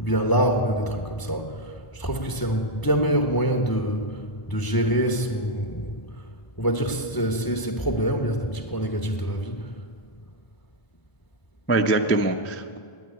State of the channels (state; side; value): late; right; 1.0 ms